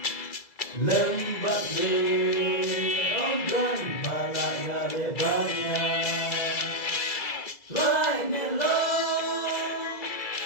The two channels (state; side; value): late; right; 2.0 ms